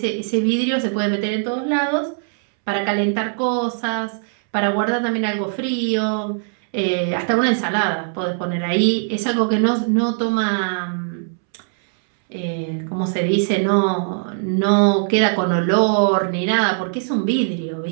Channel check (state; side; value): silent; left; 65 dB below the other